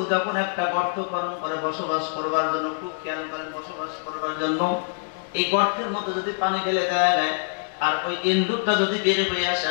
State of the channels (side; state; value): right; silent; digital silence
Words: যখন একটা গর্ত খনন করে বসবাস করবার জন্য, খুব খেয়াল করেন, বসবাস করবার জন্য এই গর্তের মধ্যে যদি পানি ঢেলে দেওয়া যায় আর ওই ইন্দুরটা যদি বের হয়ে আসে,